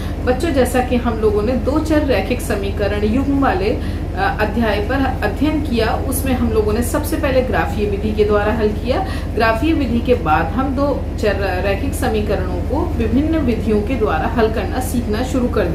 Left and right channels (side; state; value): both; identical; correlation 1.00